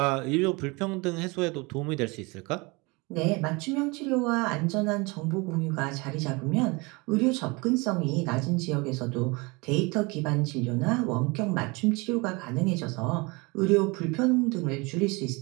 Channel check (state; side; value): quieter; left; 26.6 dB